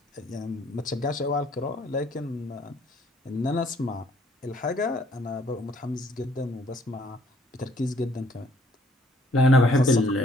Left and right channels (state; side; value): normal; both; correlation 0.63